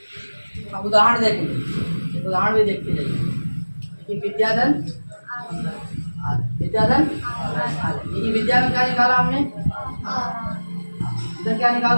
अब उदाहरण देखेंगे, उदाहरण भी देखते जाइए। विद्याधन ये विद्या में क्या निकाला हमने? इधर क्या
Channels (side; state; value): both; inverted; correlation -1.00